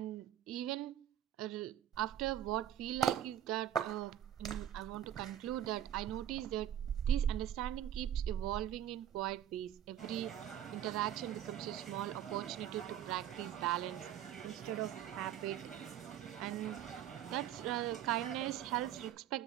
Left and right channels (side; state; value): left; quieter; 10.8 dB